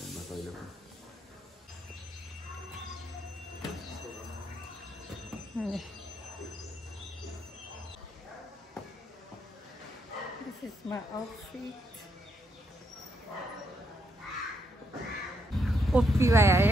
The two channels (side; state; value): both; normal; correlation 0.77